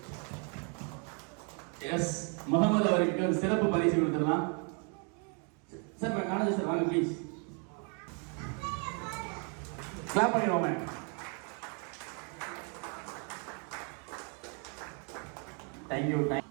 எஸ், முகமது அவருக்கு ஒரு சிறப்பு பரிசு கொடுத்துடலாம். சார் காலேஜ் சார் வாங்க ப்ளீஸ். கிளாப் பண்ணிடுவோமே. தேங்க்யூ.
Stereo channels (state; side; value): quieter; left; 37.9 dB